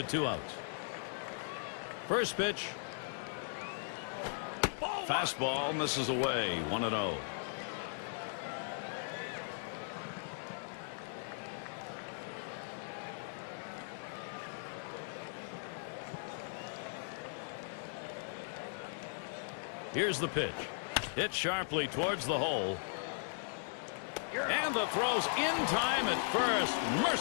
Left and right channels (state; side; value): silent; right; digital silence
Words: 2 outs. First pitch. Fastball misses away, 1-0. Here's the pitch. Hit sharply towards the hole. And the throw's in time at first.